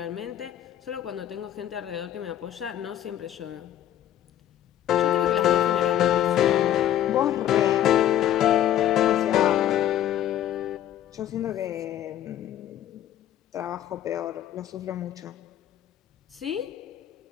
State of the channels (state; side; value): quieter; right; 11.6 dB